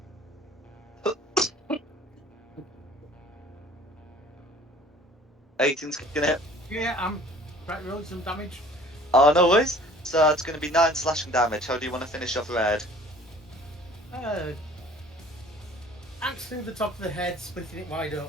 Eighteen's gonna hit. Yeah, I'm right rolling some damage. Oh, no worries. So it's gonna be 9 slashing damage. How do you want to finish off red? Axe through the top of the head, splitting it wide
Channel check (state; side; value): normal; both; correlation 0.50